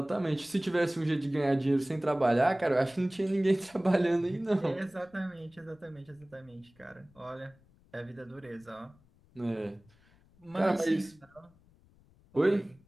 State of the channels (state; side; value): noise; left; rumble, 30 dB below the sound